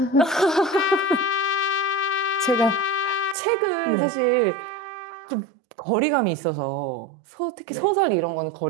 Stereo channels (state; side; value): drops out; left; at 3.4 s